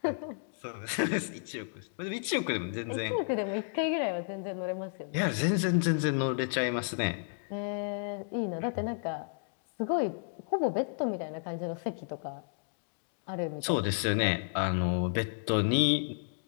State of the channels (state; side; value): silent; right; digital silence